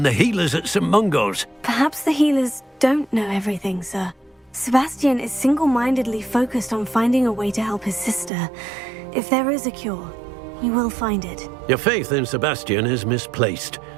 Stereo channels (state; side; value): drops out; left; at 8.3 s